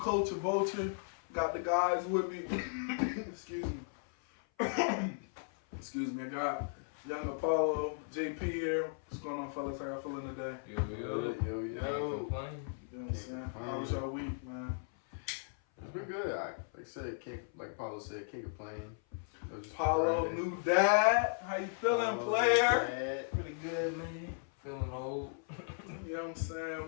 Vulture. Got the guys with me. Excuse me. Excuse me. I got young Apollo, JP here. What's going on, fellas? How y'all feeling today? Yo. You know what I'm saying? How was your week, man? It's been good. Like I said, like Paulo said, can't complain. Paulo, new dad. How you feeling, player? Pretty good, man. Feeling old. You know what I'm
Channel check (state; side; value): silent; right; 54 dB below the other